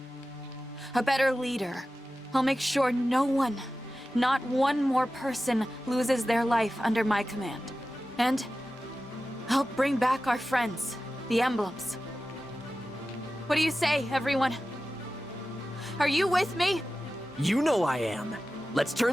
A better leader. I'll make sure no one, not one more person, loses their life under my command. And I'll bring back our friends, the emblems. What do you say, everyone? Are you with me? You know I am. Let's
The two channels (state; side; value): normal; both; correlation 0.94